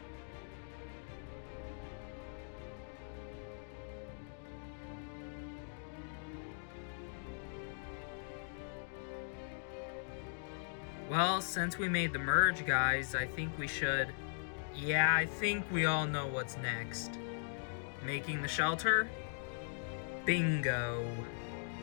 Well, since we made the merge, guys, I think we should... Yeah, I think we all know what's next. Making the shelter? Bingo.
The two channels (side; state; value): right; silent; digital silence